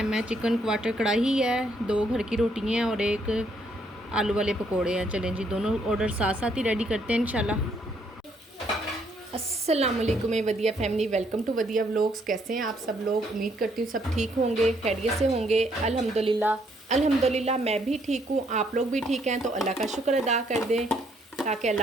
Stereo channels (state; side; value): normal; both; correlation 0.70